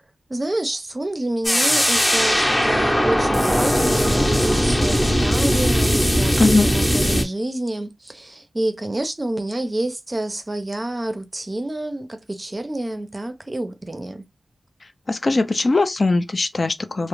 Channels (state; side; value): normal; both; correlation 0.97